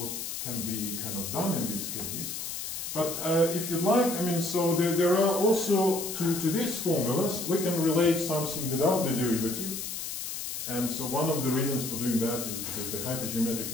can be kind of done in this case. But if you'd like, I mean, so there are also, to these formulas, we can relate something without the derivative. And so one of the reasons for doing that is because the hypergeometric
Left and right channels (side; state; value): left; noise; hiss, 5 dB below the sound